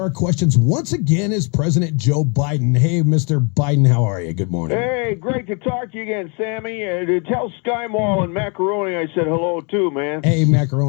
questions once again is President Joe Biden. Hey, Mr. Biden, how are you? Good morning. Hey, great to talk to you again, Sammy. Tell Sky Mall and Macaroni I said hello too, man. Hey,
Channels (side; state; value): right; quieter; 34.7 dB